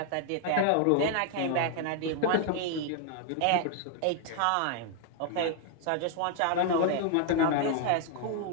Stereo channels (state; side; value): different; both; correlation 0.00